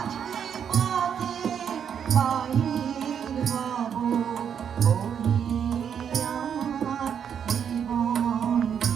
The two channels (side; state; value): left; quieter; 8.0 dB